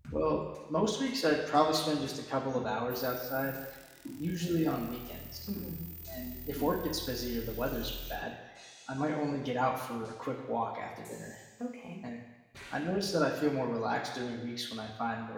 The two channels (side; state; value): both; identical; correlation 1.00